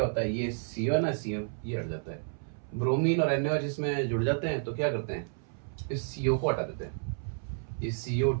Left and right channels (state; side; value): silent; left; 57 dB below the other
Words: होता है, ये CO है ना, CO ये हट जाता है, ब्रोमीन और NaOH इसमें जुड़ जाते हैं तो क्या करते हैं, इस CO को हटा देते हैं, ये